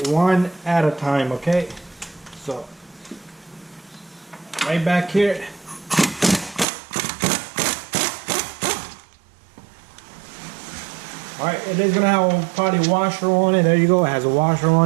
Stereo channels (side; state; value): left; drops out; at 6.7 s